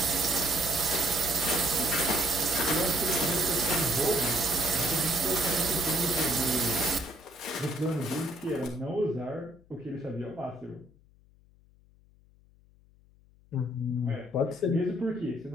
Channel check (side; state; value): left; noise; hum, 29 dB below the sound